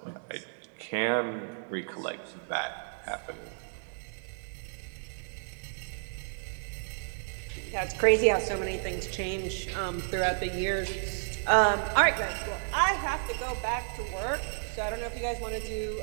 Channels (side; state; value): left; silent; digital silence